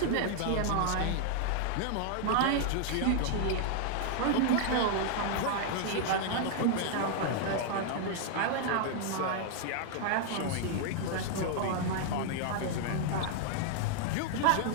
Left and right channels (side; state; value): both; different; correlation 0.00